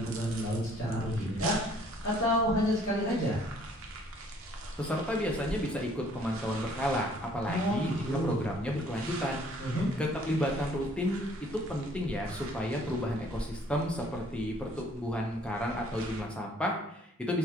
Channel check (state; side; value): normal; both; correlation 0.59